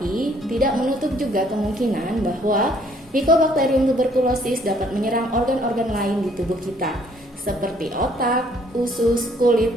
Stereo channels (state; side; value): normal; both; correlation 0.63